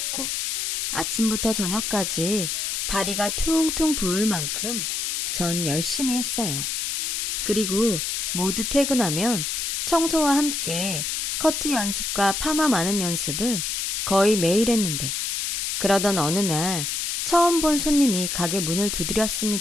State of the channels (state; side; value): noise; left; hiss, 1 dB below the sound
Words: 아침부터 저녁까지 다리가 퉁퉁 부을 만큼 전 열심히 했어요. 그리고 모두 퇴근하면 청소와 함께 커트 연습과 파마 마는 연습을 거의 매일 했는데, 그러던 어느 날 처음 본 손님이 가게 문을